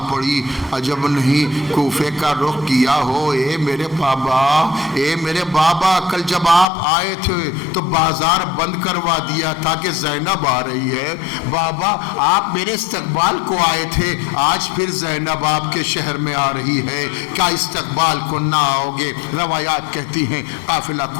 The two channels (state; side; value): drops out; right; at 6.7 s